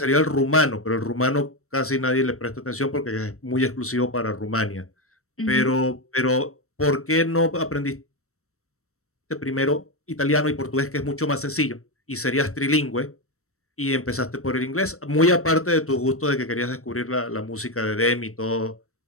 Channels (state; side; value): late; right; 0.63 ms